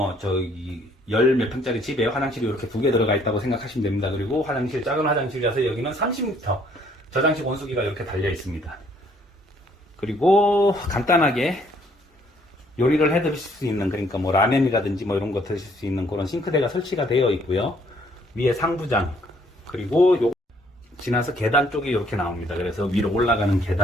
열 몇 평짜리 집에 화장실이 이렇게 2개 들어가 있다고 생각하시면 됩니다. 그리고 작은 화장실이라서 여기는 30m 저장식 온수기가 이렇게 달려 있습니다. 그리고 간단하게 요리를 해 드실 수 있는, 그러니까 뭐 라면이라든지 뭐 이런 거 드실 수 있는 그런 싱크대가 설치가 되어 있고요. 위에 상부장, 그리고 지나서 계단 쪽이 이렇게 나옵니다. 그래서 위로 올라가는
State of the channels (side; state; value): both; normal; correlation 0.64